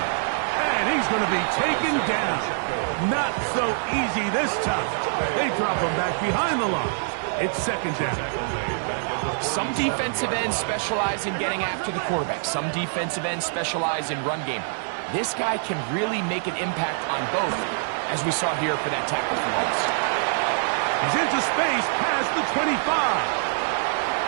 he's going to be taken down. Not so easy this time. They drop him back behind the line. It's second down. Some defensive ends specialize in getting after the quarterback. Some defensive ends specialize in run game. This guy can really make an impact on both, as we saw here for that tackle for loss. He's into space past the 25.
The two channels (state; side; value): silent; left; 56 dB below the other